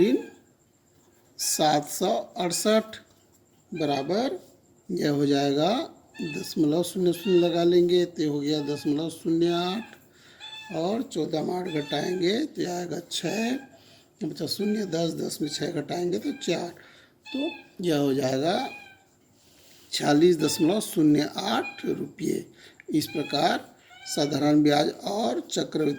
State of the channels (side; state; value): both; identical; correlation 1.00